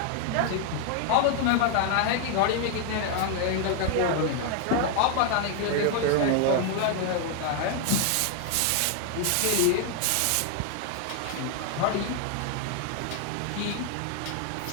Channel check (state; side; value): different; both; correlation 0.00